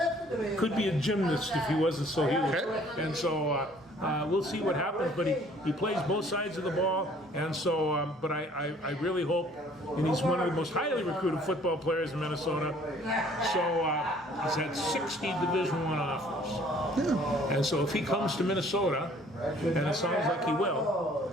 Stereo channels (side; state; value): both; normal; correlation 0.57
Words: could be a gymnast if he wasn't so huge. And so we'll see what happens. But he plays both sides of the ball, and so. But I really hope, and he's one of the most highly recruited football players in Minnesota. So he's had 60 Division I offers. And so if he comes to Minnesota, and it sounds like he will,